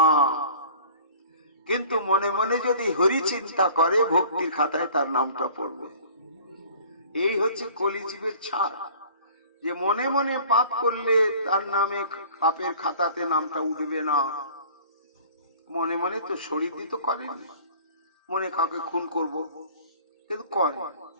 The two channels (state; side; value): inverted; both; correlation -0.47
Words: কিন্তু মনে মনে যদি হরি চিন্তা করে, ভক্তির খাতায় তার নামটা পড়বে। এই হচ্ছে কলিজীবের ছাড়, যে মনে মনে পাপ করলে তার নামে পাপের খাতাতে নামটা উঠবে না। মনে মনে তো শরীর দিয়ে তো করেন, মনে কাউকে খুন করব, কিন্তু করে।